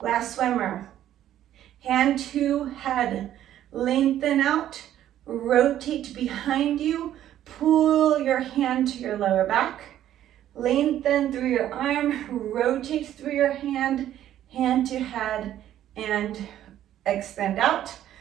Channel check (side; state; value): left; quieter; 11.9 dB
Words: last swimmer. Hand to head, lengthen out, rotate behind you, pull your hand to your lower back, lengthen through your arm, rotate through your hand, hand to head, and extend out.